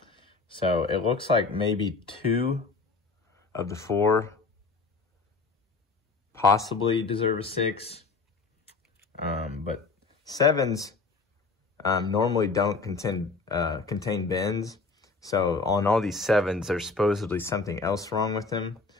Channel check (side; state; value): right; quieter; 4.1 dB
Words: So it looks like maybe 2 of the 4 possibly deserve a 6. But 7s normally don't contain bends. So on all these 7s, there's supposedly something else wrong with them.